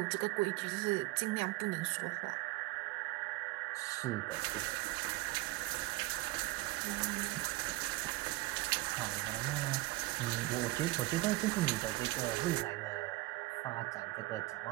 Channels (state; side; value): quieter; left; 20.5 dB